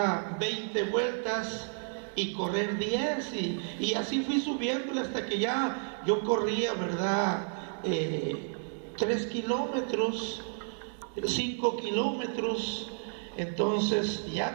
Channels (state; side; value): silent; left; 57 dB below the other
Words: 20 vueltas y correr 10 y así fui subiéndole hasta que ya yo corría, ¿verdad? 3 kilómetros, 5 kilómetros. Entonces